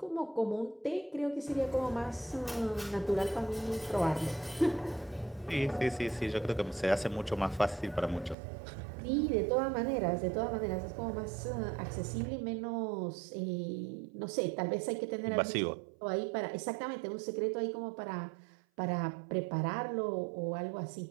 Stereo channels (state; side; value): drops out; left; at 8.3 s